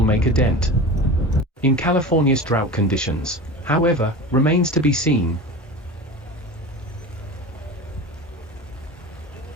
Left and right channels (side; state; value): both; normal; correlation 0.31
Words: make a dent in California's drought conditions, however, remains to be seen.